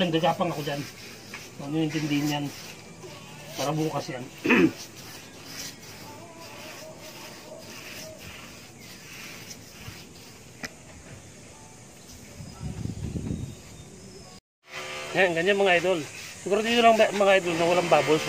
gagapang ako dyan. Huwag nyo intindihin yan. Para bukas yan. Yan, ganyan mga idol. Siguro dito lang mga idol na walang bubbles,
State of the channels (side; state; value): both; identical; correlation 1.00